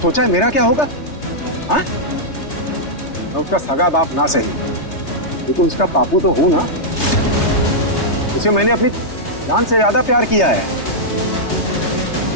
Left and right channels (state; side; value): late; right; 3.3 ms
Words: है मेरा क्या होगा? हाँ, मैं उसका सगा बाप ना सही, लेकिन उसका पापू तो हूं ना। उसे मैंने अपनी जान से ज्यादा प्यार किया है।